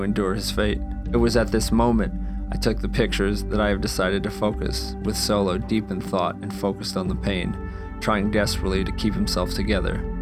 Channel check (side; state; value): both; identical; correlation 1.00